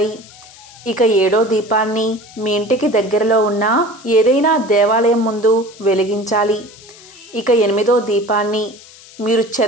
ఇక ఏడో దీపాన్ని మీ ఇంటికి దగ్గరలో ఉన్న ఏదైనా దేవాలయం ముందు వెలిగించాలి. ఇక ఎనిమిదో దీపాన్ని మీరు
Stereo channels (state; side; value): noise; left; hiss, 21 dB below the sound